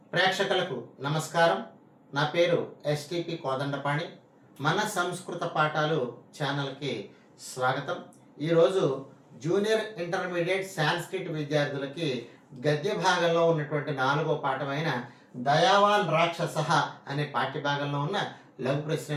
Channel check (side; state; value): both; identical; correlation 1.00